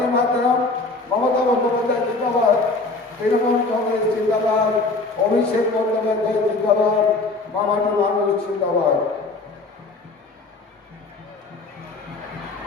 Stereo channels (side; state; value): right; quieter; 3.4 dB